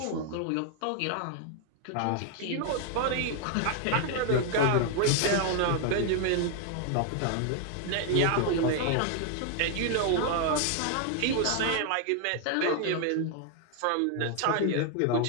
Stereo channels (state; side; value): different; both; correlation 0.00